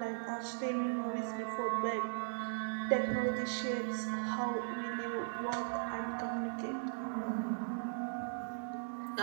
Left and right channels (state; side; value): silent; left; digital silence